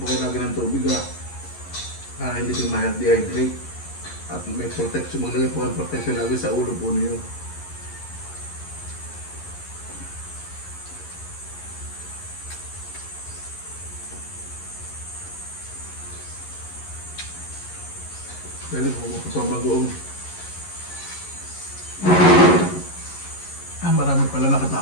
po kayo lagi ng tubig para hindi po ma-dehydrate. At may protection, maglagay po ang protection lagi sa ulo po niyo. Dahil po magpapabagoong marami pala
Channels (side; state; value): right; late; 11 ms